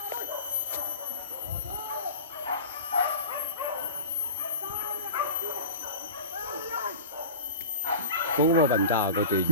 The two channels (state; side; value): inverted; both; correlation -0.35